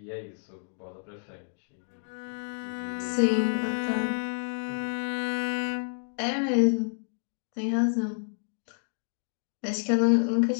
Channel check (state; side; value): silent; right; digital silence